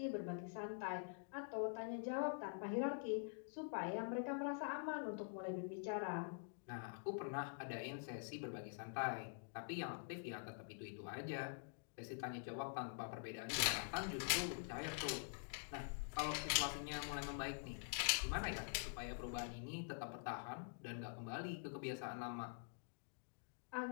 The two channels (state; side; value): silent; right; digital silence